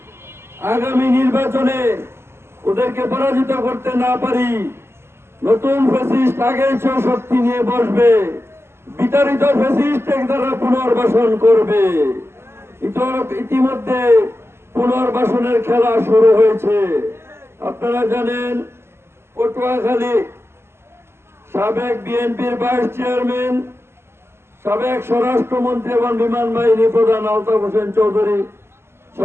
আগামী নির্বাচনে ওদেরকে পরাজিত করতে না পারি, নতুন ফ্যাসিস্ট আগের চেয়ে শক্তি নিয়ে বসবে, বিতাড়িত ফ্যাসিস্ট তারা পুনর্বাসন করবে। ইতিমধ্যে পুনর্বাসনের খেলা শুরু হয়েছে। আপনারা জানেন, পটুয়াখালী সাবেক বিএনপির ভাইস চেয়ারম্যান, সাবেক স্বরাষ্ট্রমন্ত্রী এবং বিমান বাহিনী প্রধান আলতাফ হোসেন চৌধুরী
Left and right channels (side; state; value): left; late; 0.12 ms